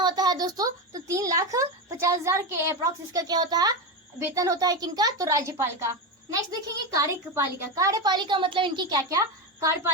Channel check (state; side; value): normal; both; correlation 0.15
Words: होता है दोस्तों? तो 3,50,000 के अप्रॉक्स इसका क्या होता है? वेतन होता है। किनका? तो राज्यपाल का। नेक्स्ट देखेंगे कार्यपालिका। कार्यपालिका मतलब इनकी क्या क्या